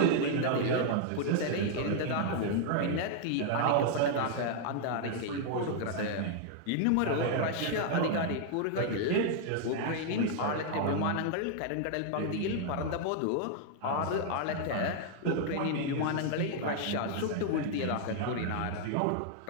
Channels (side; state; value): both; different; correlation 0.00